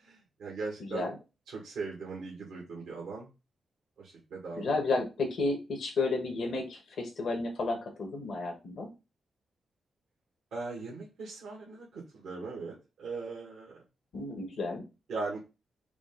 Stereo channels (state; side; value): normal; both; correlation 0.76